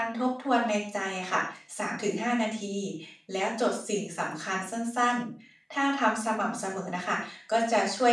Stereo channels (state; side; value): identical; both; correlation 1.00